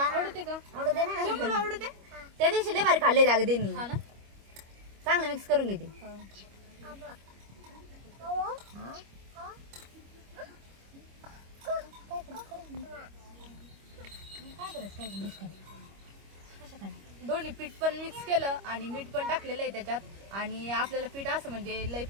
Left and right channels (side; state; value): left; late; 25 ms